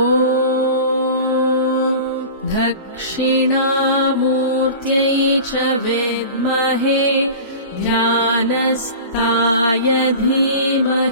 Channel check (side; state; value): both; inverted; correlation -0.35